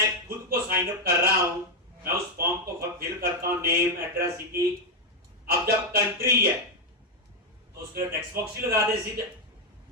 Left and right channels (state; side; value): normal; both; correlation 0.01